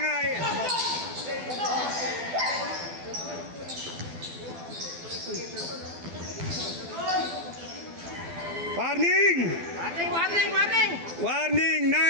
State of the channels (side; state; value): left; late; 12 ms